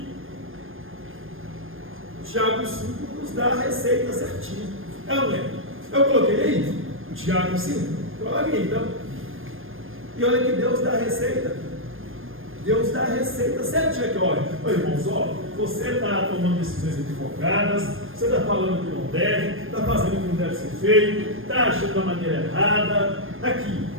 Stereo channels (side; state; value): left; late; 0.59 ms